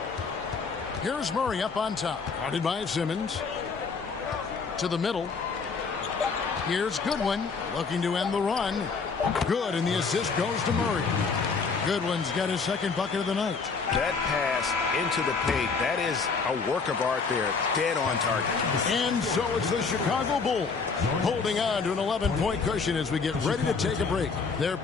Here's Murray up on top. Guarded by Simmons. To the middle. Here's Goodwin looking to end the run. Good, and the assist goes to Murray. Goodwin's got his second bucket of the night. That pass into the paint, that is a work of art there. Dead on target. And so it's the Chicago Bulls holding on to an 11-point cushion as we get ready to take a break. They're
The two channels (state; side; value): quieter; right; 4.9 dB